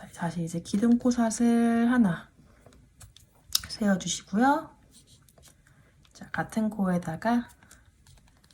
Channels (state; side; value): identical; both; correlation 1.00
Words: 다시 이제 기둥코삿을 하나 세워주시고요. 자, 같은 코에다가